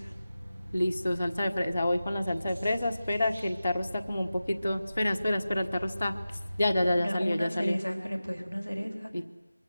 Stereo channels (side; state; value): both; inverted; correlation -0.94